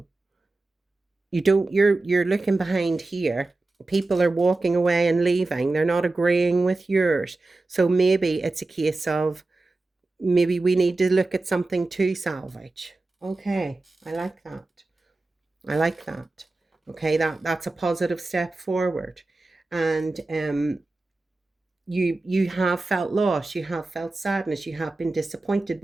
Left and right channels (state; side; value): quieter; left; 3.2 dB